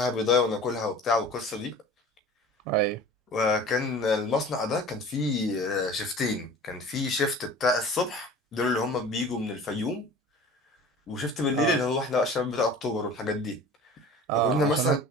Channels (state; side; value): normal; both; correlation 0.42